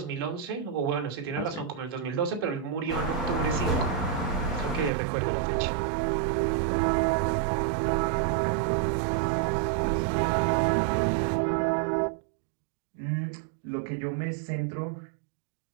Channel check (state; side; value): drops out; left; at 4.9 s